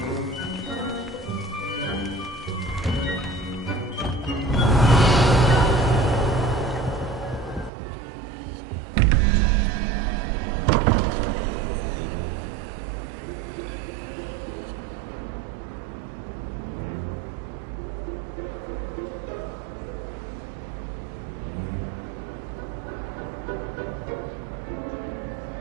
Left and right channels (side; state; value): left; drops out; at 7.7 s